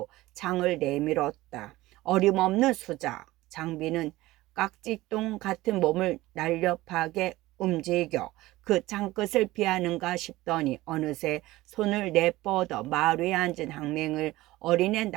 창을 내밀었다. 어림없는 수작. 장비는 깍지똥 같은 몸을 날렵하게 움직여 그 창끝을 피하는가 싶더니 어느새 손을 내뻗어 말 위에 앉은 항맹을 어린애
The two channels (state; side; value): quieter; left; 18.0 dB